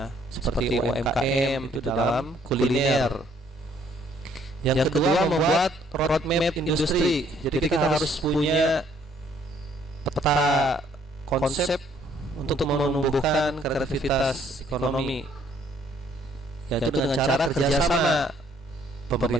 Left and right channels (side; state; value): both; normal; correlation 0.64